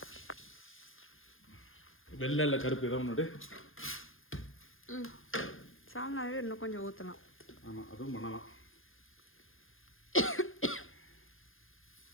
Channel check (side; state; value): right; late; 0.59 ms